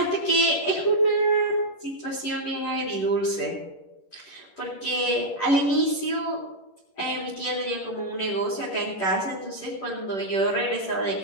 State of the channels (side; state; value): right; late; 10 ms